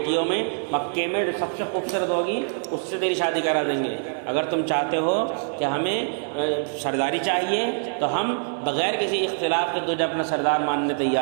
میں مکے میں جو سب سے خوبصورت ہوگی اس سے تیری شادی کرا دیں گے۔ اگر تم چاہتے ہو کہ ہمیں سرداری چاہیے تو ہم بغیر کسی اختلاف کے تجھے اپنا سردار ماننے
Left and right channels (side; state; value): left; silent; digital silence